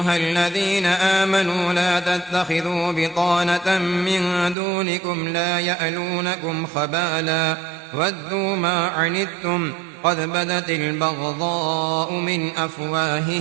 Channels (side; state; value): left; drops out; at 4.5 s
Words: الذين آمنوا لا تتخذوا بطانة من دونكم لا يألونكم خبالا ودوا ما عنتم قد بدت البغضاء من